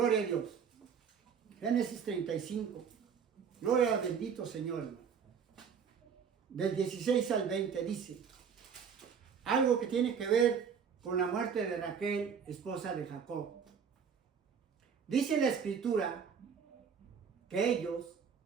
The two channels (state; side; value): quieter; left; 6.8 dB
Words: a Dios. Génesis 35. Gloria al bendito Señor, hermano. Del 16 al 20 dice algo que tiene que ver con la muerte de Raquel, esposa de Jacob. Dice la Escritura que ellos,